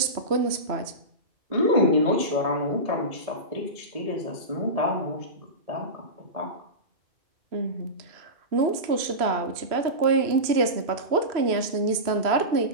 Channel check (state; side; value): late; left; 3.0 ms